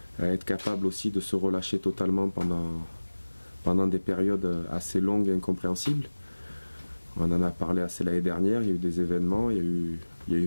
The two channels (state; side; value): inverted; both; correlation -1.00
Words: à être capable aussi de se relâcher totalement pendant des périodes assez longues et incompréhensibles. On en a parlé assez l'année dernière, il y a eu des événements, il y a eu